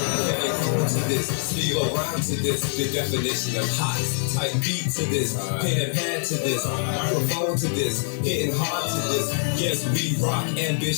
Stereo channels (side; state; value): right; silent; 62 dB below the other